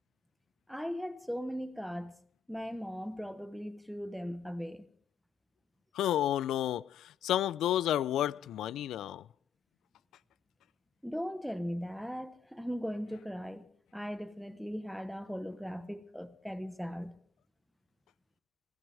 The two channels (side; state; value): right; quieter; 5.8 dB